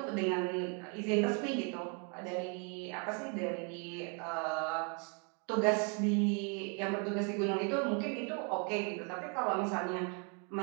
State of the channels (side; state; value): left; quieter; 37.0 dB